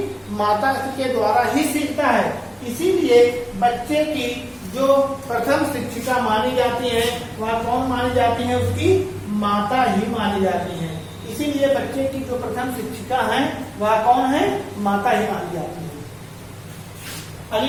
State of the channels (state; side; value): identical; both; correlation 1.00